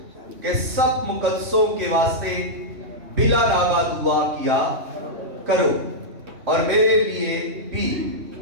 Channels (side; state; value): left; late; 3.5 ms